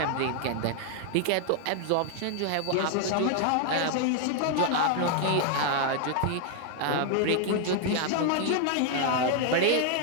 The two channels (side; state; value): both; different; correlation 0.00